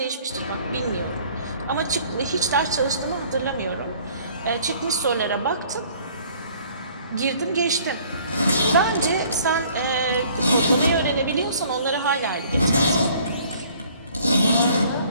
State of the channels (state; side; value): inverted; both; correlation -0.56